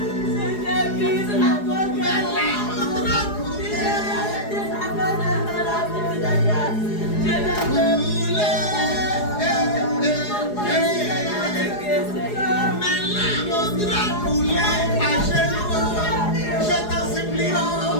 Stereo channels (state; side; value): late; right; 4.8 ms